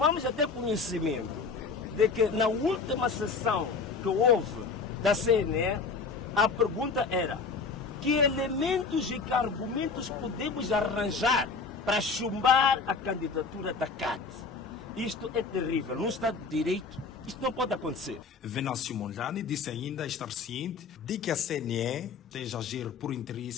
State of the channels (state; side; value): quieter; right; 4.7 dB